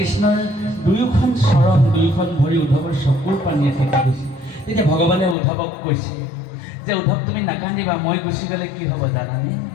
দুয়োখন চৰণ দুয়োখন ভৰি উদ্ধৱৰ চকুৰ পানীয়ে ফেকি গৈছে। তেতিয়া ভগৱানে উদ্ধৱক কৈছে যে উদ্ধৱ তুমি নাকান্দিবা, মই গুচি গ'লে কি হ'ব জানানে?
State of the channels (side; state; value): right; drops out; at 5.4 s